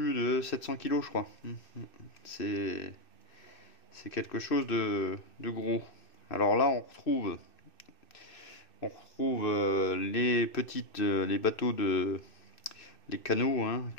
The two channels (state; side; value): late; right; 2.6 ms